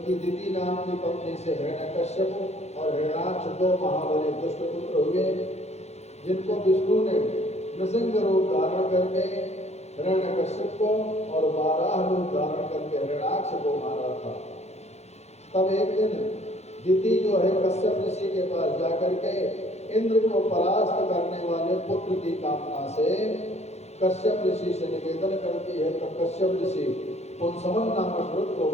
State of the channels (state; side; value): late; right; 0.31 ms